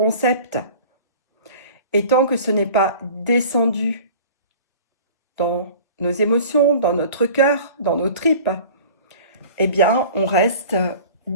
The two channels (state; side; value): inverted; both; correlation -0.43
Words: Et tant que ce n'est pas descendu dans nos émotions, dans notre cœur, dans nos tripes, eh bien, on reste